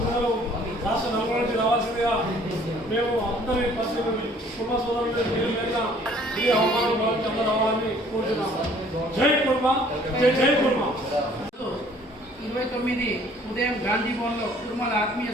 రాష్ట్ర నలుగురు నుంచి రావాల్సిందిగా మేము అందరి పరిస్థితులు కుటుంబ సోదరులు ఈ అవమానం భావించి అందరూ రావాలని కోరుతున్నాము. జై కుర్మా, జై జై కుర్మా. 29 ఉదయం గాంధీ భవన్లో కుటుంబాల ఆత్మీయ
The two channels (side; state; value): both; normal; correlation 0.57